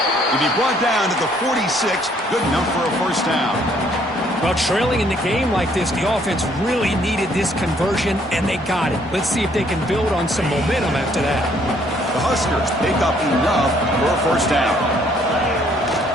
To be brought down to the 46, good enough for a first down. Well, trailing in the game like this, the offense really needed this conversion, and they got it. Let's see if they can build on some momentum after that. The Huskers pick up enough for a first down.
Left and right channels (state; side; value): normal; both; correlation 0.65